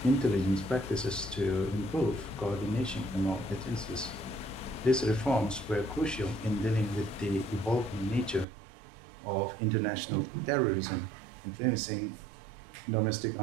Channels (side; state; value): left; drops out; at 8.5 s